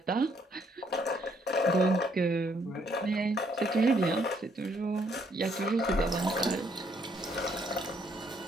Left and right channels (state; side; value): normal; both; correlation 0.69